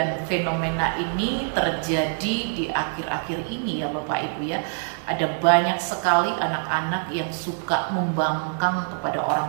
fenomena ini terjadi di akhir-akhir ini ya Bapak Ibu ya. Ada banyak sekali anak-anak yang suka membangkang kepada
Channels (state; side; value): silent; left; 62 dB below the other